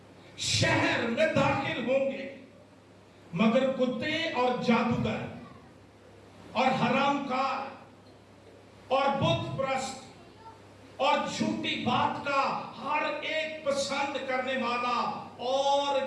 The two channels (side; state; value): both; identical; correlation 1.00